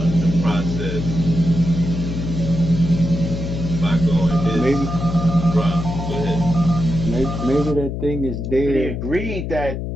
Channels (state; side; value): noise; left; hum, 5 dB below the sound